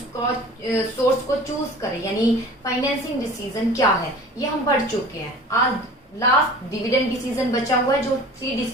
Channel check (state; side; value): normal; both; correlation 0.43